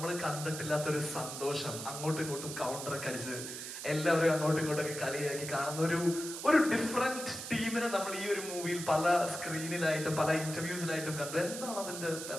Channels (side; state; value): right; noise; hiss, 8 dB below the sound